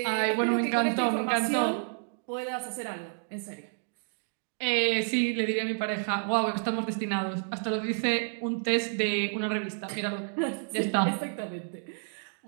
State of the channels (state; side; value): silent; left; 58 dB below the other